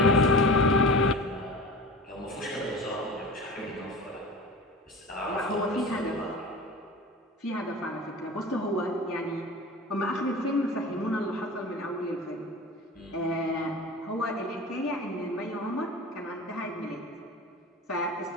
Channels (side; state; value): both; normal; correlation 0.35